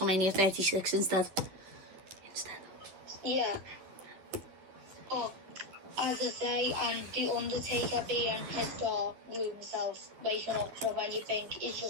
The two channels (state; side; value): late; left; 11 ms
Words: 36 instead. Yeah. But as I say, and The Undertaker being his dog, glued himself, waking up from when you think he's